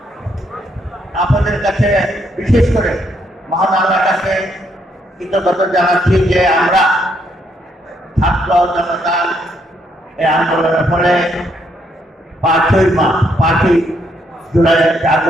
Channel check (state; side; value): normal; both; correlation 0.74